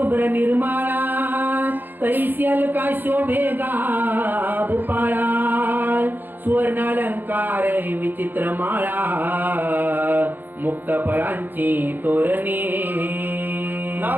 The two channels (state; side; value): late; left; 0.090 ms